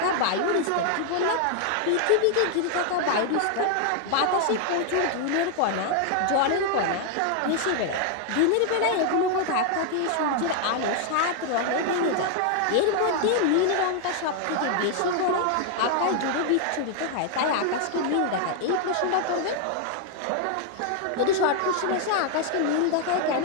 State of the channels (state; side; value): different; both; correlation 0.00